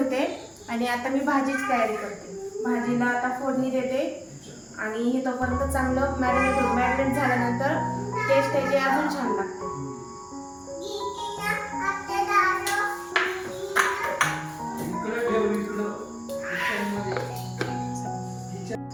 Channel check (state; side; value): identical; both; correlation 1.00